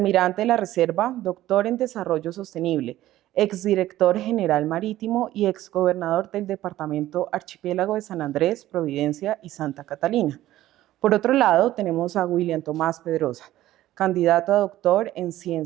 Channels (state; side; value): quieter; left; 14.6 dB